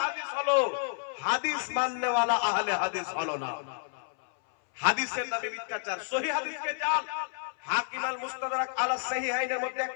হাদিস হলো, হাদিস মাননে ওয়ালা আহলে হাদিস হলো না। হাদিসের নামে মিথ্যাচার, সহিহ হাদিসকে জাল। হাকিম আল মুস্তাদরাক আলা সাহিহাইনের মধ্যে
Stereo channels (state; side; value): silent; right; 58 dB below the other